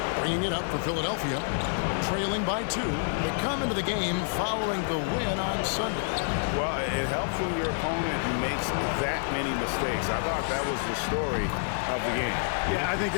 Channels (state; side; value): silent; right; digital silence